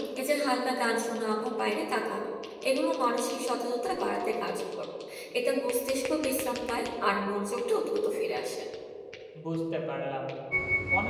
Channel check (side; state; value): both; identical; correlation 1.00